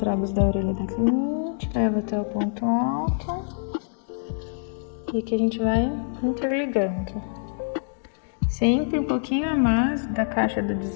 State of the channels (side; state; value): right; silent; digital silence